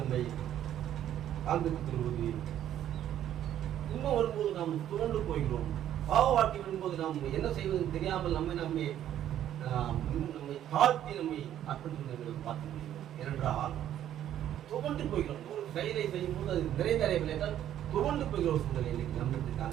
காண்பித்துக் கொள்வது, துன்பம் வரும்போது நாம் துவண்டு போகிறோம். பாவ வாழ்க்கை வரும்போது நாம் என்ன செய்வது தெரியாமல் நம்மை தாழ்த்தி நம்மை அர்ப்பணித்து பார்க்க முடியும். ஏனென்றால் துவண்டு போகிறோம். ஒரு செயலை செய்யும் போது அது நிறைவேறவில்லை என்றால் துவண்டு போகிற ஒரு சூழ்நிலை இன்னைக்கு நம்மளுக்கு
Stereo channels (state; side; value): quieter; left; 11.2 dB